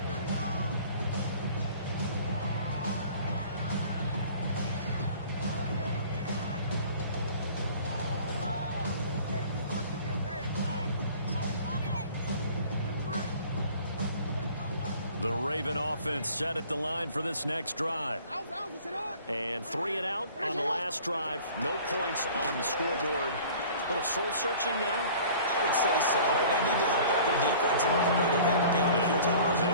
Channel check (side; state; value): both; inverted; correlation -0.48